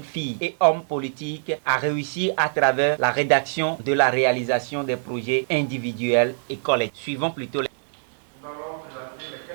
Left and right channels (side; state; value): left; silent; 61 dB below the other